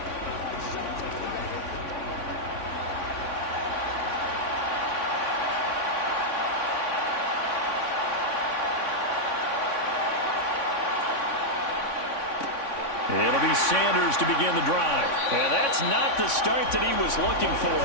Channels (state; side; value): late; right; 3.5 ms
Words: It'll be Sanders to begin the drive. And that's not the start that he was looking for,